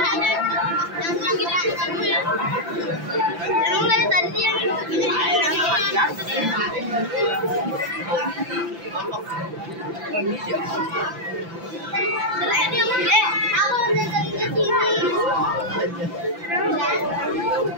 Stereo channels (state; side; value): late; left; 5.9 ms